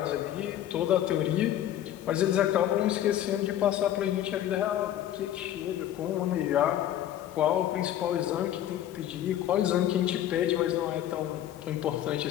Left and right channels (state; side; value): quieter; right; 11.7 dB